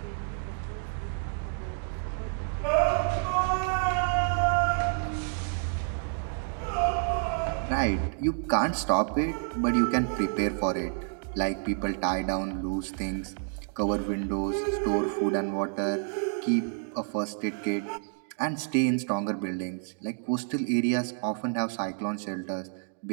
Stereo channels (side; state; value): left; silent; 58 dB below the other